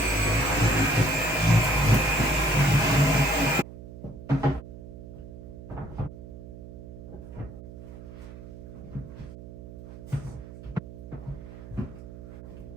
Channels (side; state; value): right; noise; hum, 14 dB below the sound